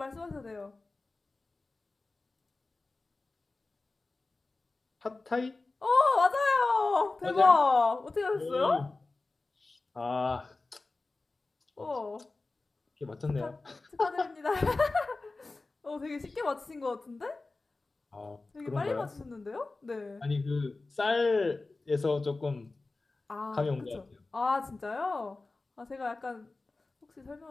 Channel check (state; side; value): quieter; right; 3.4 dB